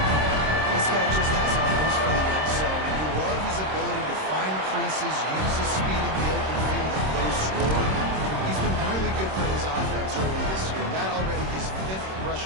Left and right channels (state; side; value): late; left; 26 ms